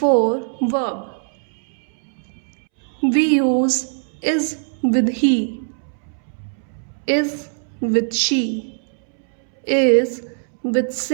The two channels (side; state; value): left; silent; 65 dB below the other